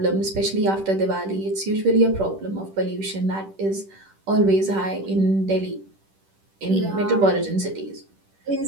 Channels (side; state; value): left; late; 10 ms